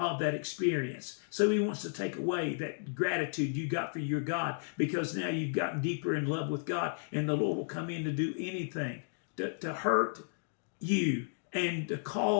that experience. So he wants to take away that gratitude you got for your God, because now you've gotten deeper in love with God, and the Lord will come in to do anything to hurt you and to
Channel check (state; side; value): silent; right; digital silence